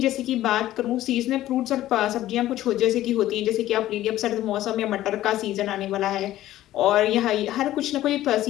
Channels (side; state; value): right; quieter; 14.3 dB